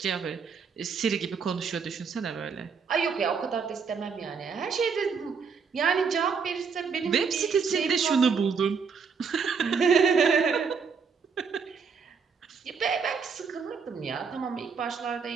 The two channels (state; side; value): quieter; left; 5.8 dB